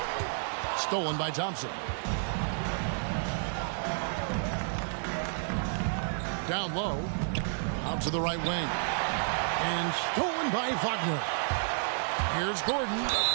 Stolen by Thompson. Down low. Out to the right wing. And stolen by Wagner. Here's Gordon.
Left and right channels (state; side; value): silent; left; 57 dB below the other